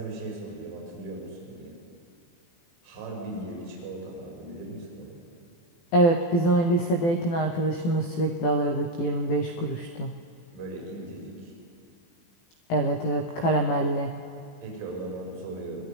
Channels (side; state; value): right; late; 18 ms